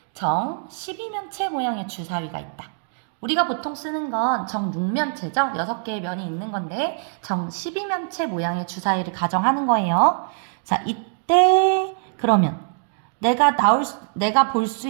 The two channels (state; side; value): silent; left; digital silence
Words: 정 12면체 모양의 주사위가 있다. 우리가 보통 쓰는 건 정 6면체죠. 6개의 면이 있는 건데 정 12면체 모양의 주사위를 가정하는 거예요. 자, 이때 그러면 내가 볼 수